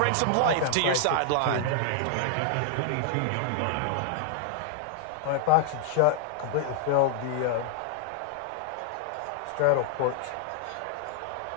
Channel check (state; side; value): different; both; correlation -0.01